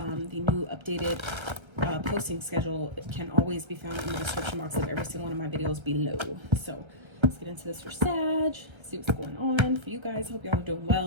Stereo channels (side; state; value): left; late; 1.3 ms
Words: new updated posting schedule. It can always be found in the description box of every single one of my videos below. So let's get into this for Sag, see what's going on for you guys. Hope y'all are doing